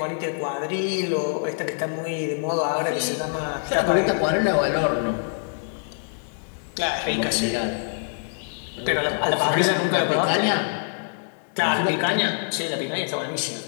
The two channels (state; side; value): silent; right; digital silence